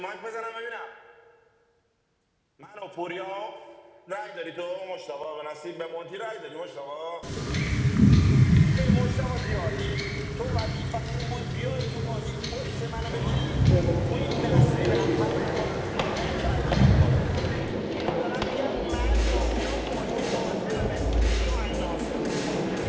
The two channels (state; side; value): identical; both; correlation 1.00